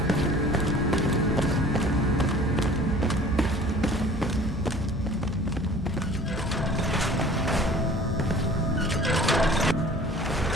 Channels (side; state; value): both; normal; correlation 0.47